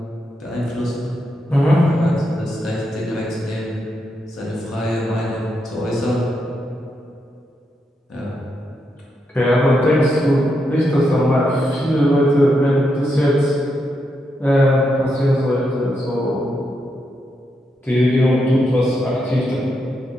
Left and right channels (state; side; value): normal; both; correlation 0.82